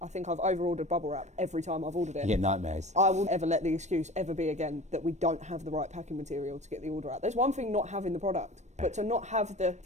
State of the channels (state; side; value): late; left; 0.34 ms